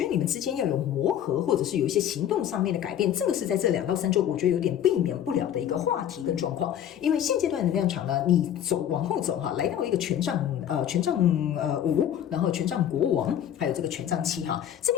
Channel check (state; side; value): quieter; right; 10.2 dB